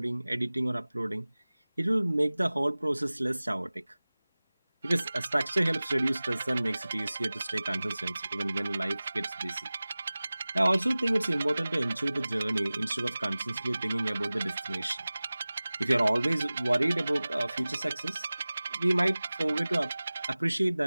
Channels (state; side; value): inverted; both; correlation -0.98